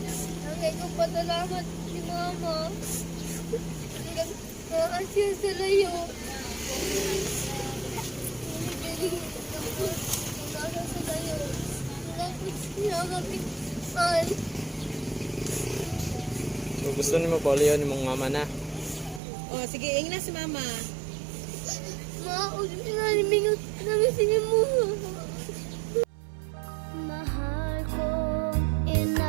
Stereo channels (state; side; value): drops out; left; at 19.2 s